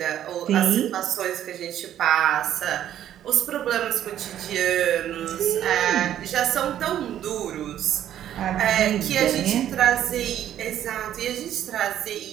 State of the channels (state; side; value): quieter; left; 11.1 dB